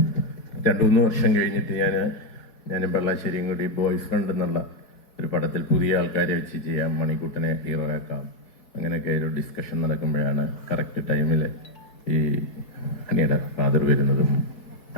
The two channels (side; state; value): right; late; 4.6 ms